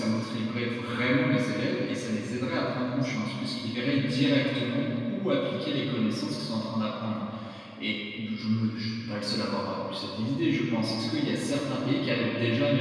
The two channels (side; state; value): both; identical; correlation 1.00